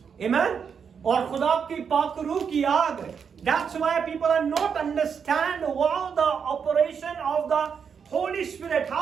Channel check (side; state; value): left; quieter; 6.7 dB